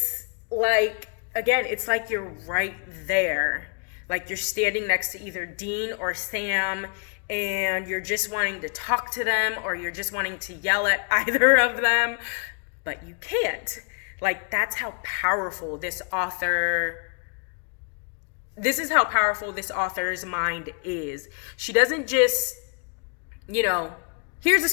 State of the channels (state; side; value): quieter; right; 39.0 dB